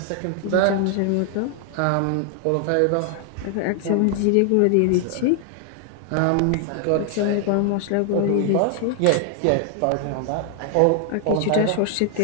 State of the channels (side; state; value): both; different; correlation 0.00